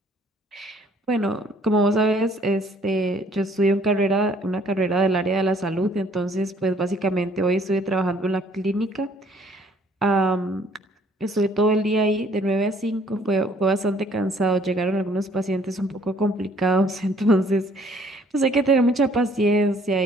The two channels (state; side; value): normal; both; correlation 0.61